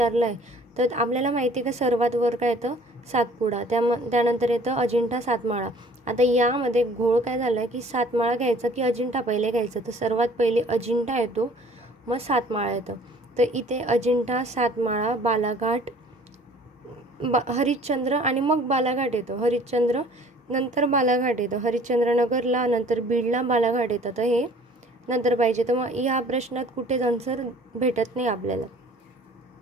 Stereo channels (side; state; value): both; normal; correlation 0.52